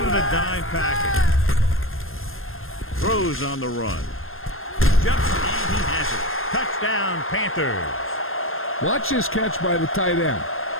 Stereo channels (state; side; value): late; right; 0.60 ms